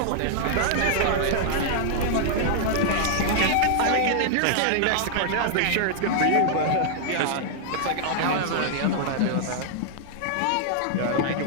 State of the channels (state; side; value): different; both; correlation -0.01